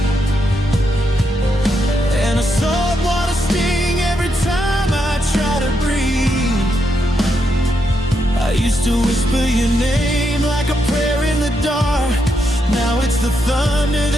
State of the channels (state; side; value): normal; both; correlation 0.81